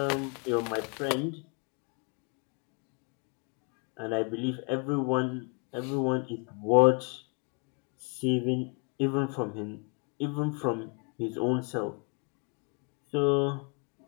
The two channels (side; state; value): right; quieter; 36.4 dB